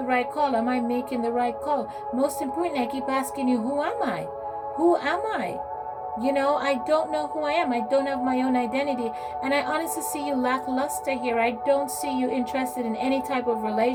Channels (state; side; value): identical; both; correlation 1.00